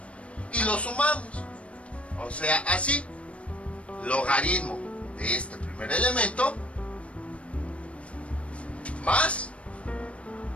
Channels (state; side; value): late; right; 0.062 ms